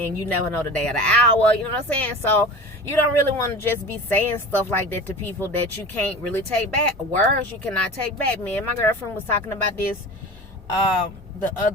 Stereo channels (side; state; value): both; normal; correlation 0.35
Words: you never know the day or the hour, you know what I'm saying? So you don't really want to just be saying stuff like that to people that you can't really take back. Words you cannot take back. Me and my girlfriend was talking about this the